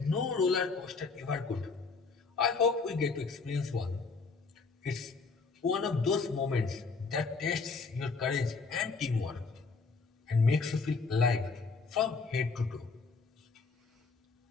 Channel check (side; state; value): right; quieter; 4.5 dB